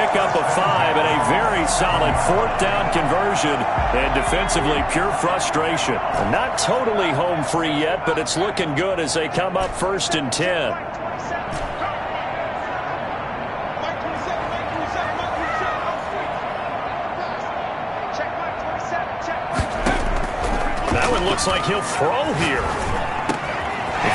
of 5 and a very solid 4th down conversion. And defensively, pure frustration. Not totally home free yet, but it's looking good as they come up 1st and 10. That one looks like he'll throw here. He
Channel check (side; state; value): both; identical; correlation 1.00